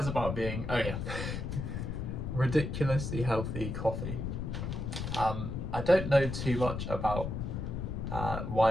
about being, oh yeah, ridiculously healthy coffee. I don't know too much about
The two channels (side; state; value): left; noise; rumble, 4 dB below the sound